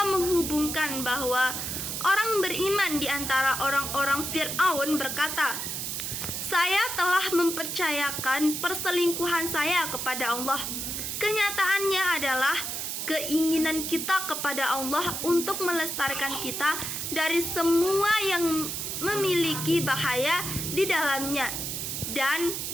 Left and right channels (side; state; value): right; noise; hiss, 4 dB below the sound